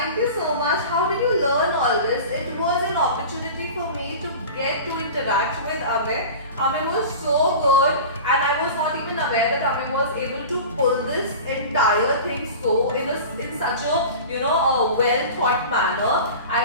you so much. How did you learn all this? It was an opportunity for me to get to interact with Amey. Amey was so good, and I was not even aware that Amey was able to pull this entire thing so in such a a well thought manner.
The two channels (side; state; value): both; inverted; correlation -0.34